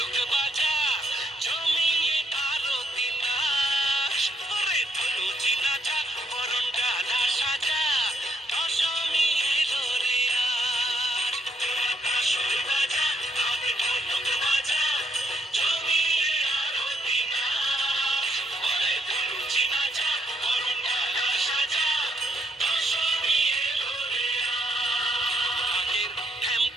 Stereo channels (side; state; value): both; normal; correlation 0.74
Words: বাজা, জমিয়ে আরতি নাচ। ওরে ধনুচি নাচা, বরণ ডালা সাজা, দশমী এলো রে আজ। তোরা কাসর বাজা, ঢাক ঢোলক বাজা, জমিয়ে আরতি নাচ। ওরে ধনুচি নাচা, বরণ ডালা সাজা, দশমী এলো রে আজ।